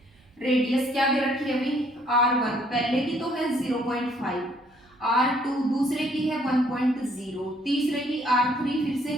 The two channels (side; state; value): both; normal; correlation 0.64